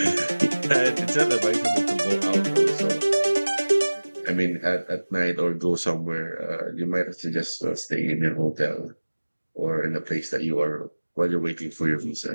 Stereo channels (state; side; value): inverted; both; correlation -1.00